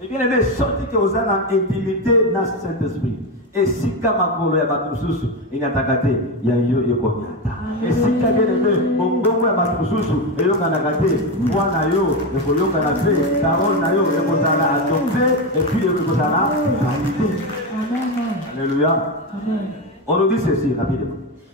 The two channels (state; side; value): normal; both; correlation 0.14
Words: Et bien aimé, sorti que vous avez intimité dans ce Saint-Esprit. Et si Kamakolo ya Batususu, il y a Takate, il y a Yokomiata. Et si bien aimé, Bongo ya Batususu, il y a Kanakate, Moi Nayo, il faut Yokanate, Tarol Nayo, il faut Zala adopté, et puis il faut Zala validé. Alléluia. On nous dit ceci rapidement.